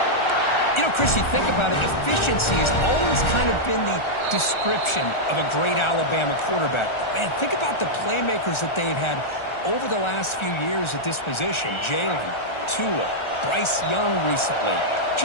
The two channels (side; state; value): right; late; 1.4 ms